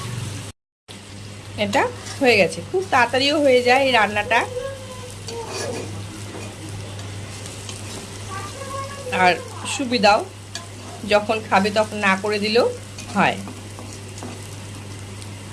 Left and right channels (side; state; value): both; identical; correlation 1.00